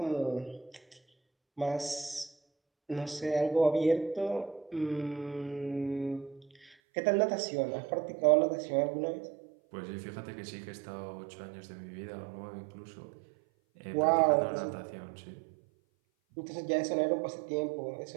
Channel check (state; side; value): drops out; left; at 6.7 s